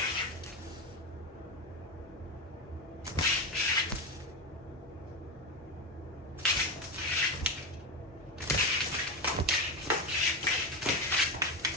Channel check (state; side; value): normal; both; correlation 0.15